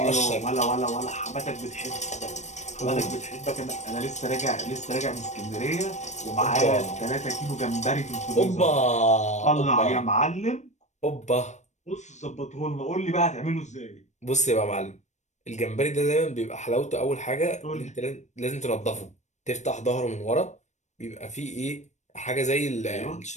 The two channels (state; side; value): late; right; 0.34 ms